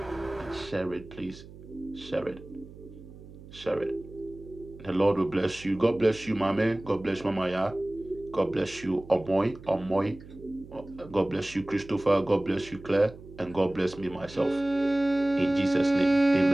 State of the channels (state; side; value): noise; right; hum, 18 dB below the sound